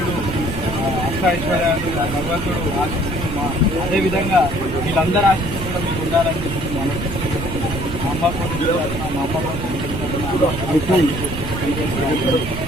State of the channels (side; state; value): right; noise; rumble, 6 dB below the sound